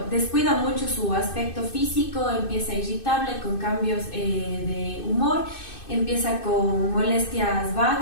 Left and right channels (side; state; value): right; late; 2.6 ms